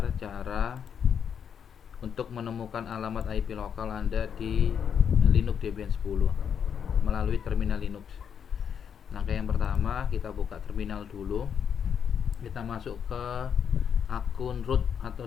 cara untuk menemukan alamat IP lokal Anda di Linux Debian 10 melalui terminal Linux. Langkah yang pertama, kita buka terminal dulu. Kita masuk ke akun root atau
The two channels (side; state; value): right; quieter; 7.7 dB